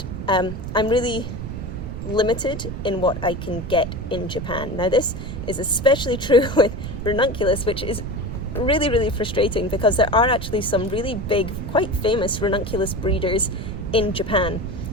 I'm really limited in what I can get in Japan. Now, this is especially true with ranunculus, which is really, really frustrating because there are actually some really big, quite famous ranunculus breeders in Japan,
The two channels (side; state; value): right; noise; rumble, 7 dB below the sound